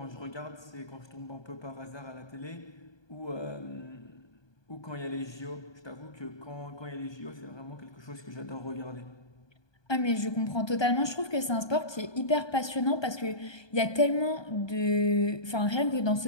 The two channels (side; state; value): right; late; 1.2 ms